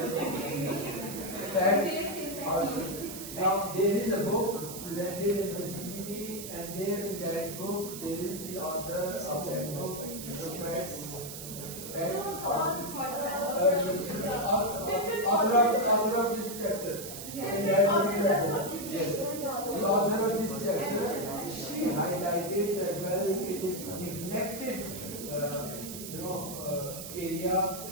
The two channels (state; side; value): noise; right; hiss, 10 dB below the sound